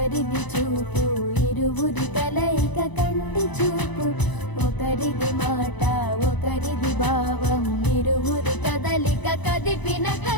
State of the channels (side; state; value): right; late; 1.0 ms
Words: ఒకరిది చూపు ఇరువురి కలయిక కంటి చూపు, ఒకరిది మాట ఒకరిది భావం ఇరువురి కదలిక కదిపిన